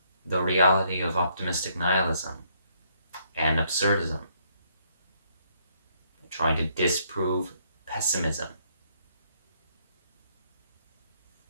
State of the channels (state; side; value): inverted; both; correlation -0.70